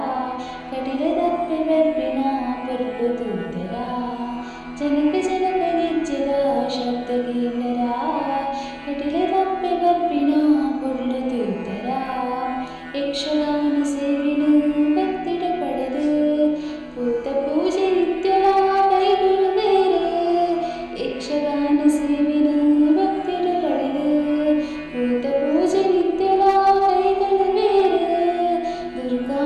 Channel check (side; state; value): both; identical; correlation 1.00